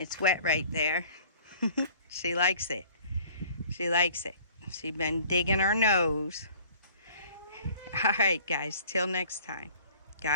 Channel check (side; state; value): both; inverted; correlation -0.52